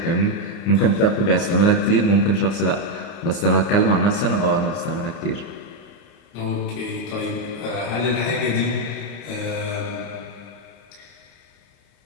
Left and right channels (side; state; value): right; late; 29 ms